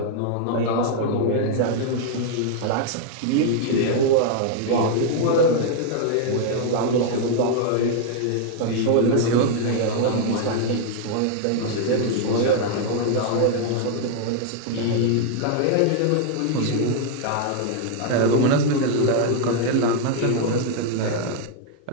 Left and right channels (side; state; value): both; different; correlation 0.00